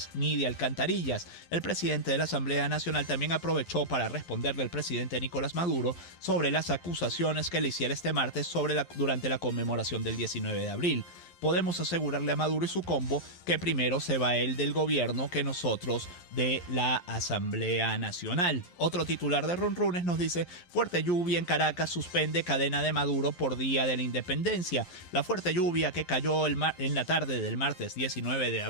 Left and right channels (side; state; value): right; late; 11 ms